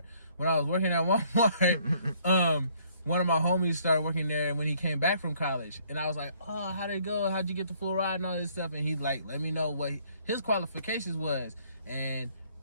when I was working at Walmart, one of my homies started working there when he came back from college, and I was like, oh, how'd it go? How'd you get the full ride and all this stuff? And he like let me know what his qualifications was, and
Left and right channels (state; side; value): inverted; both; correlation -0.63